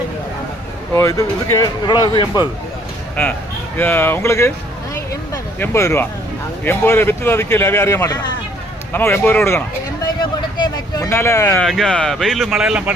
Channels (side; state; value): both; normal; correlation 0.62